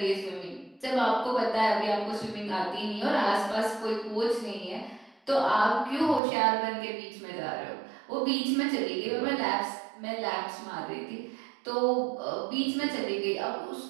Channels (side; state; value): left; drops out; at 6.2 s